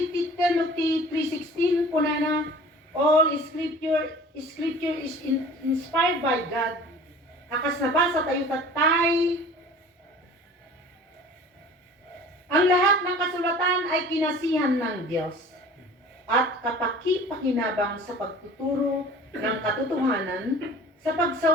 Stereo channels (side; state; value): both; normal; correlation 0.44